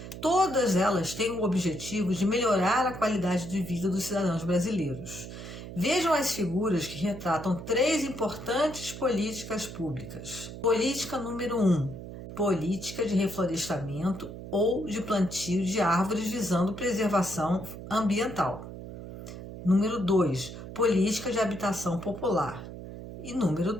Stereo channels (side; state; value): right; noise; hum, 11 dB below the sound